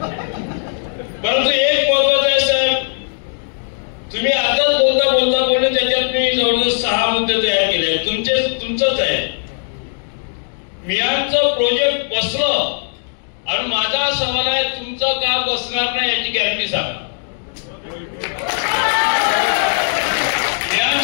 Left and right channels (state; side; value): silent; right; digital silence